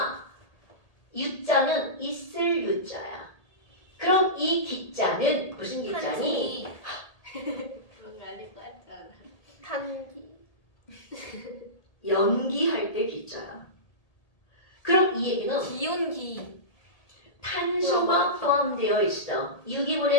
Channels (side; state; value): right; late; 1.8 ms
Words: 유자는 있을 유자야. 그럼 이 기자는 무슨 기자니? 그런 거 아닐 것 같지 않아? 탄기. 연기할 때 기자야. 그럼 이 얘기는 기온기. 탄소가 포함되어 있어.